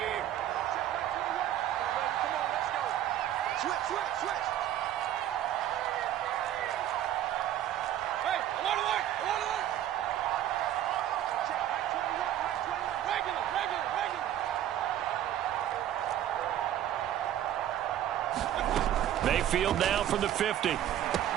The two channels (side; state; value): left; quieter; 11.7 dB